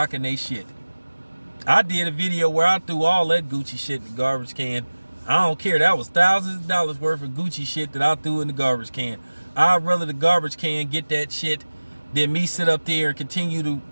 they shit. I did a video where I threw all that Gucci shit in the garbage can. I don't care. That was thousands of dollars worth of Gucci shit that I threw in the garbage can. I'd rather the garbage can get that shit than me sit up there and continue to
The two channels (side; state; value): both; inverted; correlation -1.00